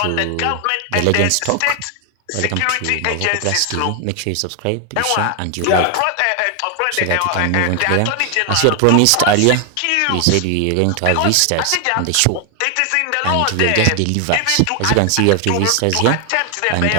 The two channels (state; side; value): different; both; correlation 0.00